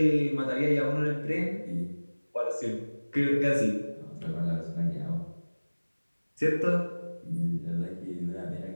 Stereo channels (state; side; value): inverted; both; correlation -1.00